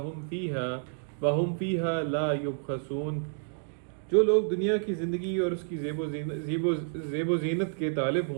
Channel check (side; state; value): left; silent; digital silence